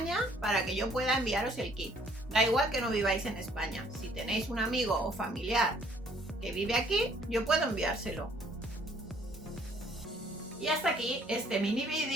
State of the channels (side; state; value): both; normal; correlation 0.61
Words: para que yo pueda enviaros el kit. Da igual que no viváis en España. Si tenéis un amigo o familiar que vive aquí, yo puedo enviárselo. Y hasta aquí este mini